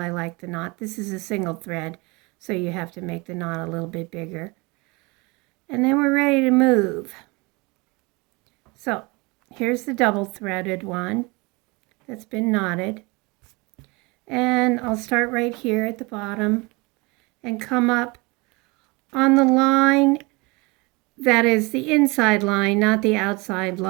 like the knot. This is a single thread, so you have to make the knot a little bit bigger. And then we're ready to move. So here's the double threaded one that's been knotted. And I'll start right here at the bottom and come up on the line that is the inside line, not the outside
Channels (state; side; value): quieter; left; 26.5 dB